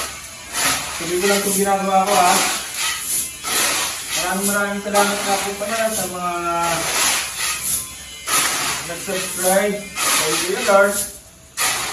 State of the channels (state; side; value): identical; both; correlation 1.00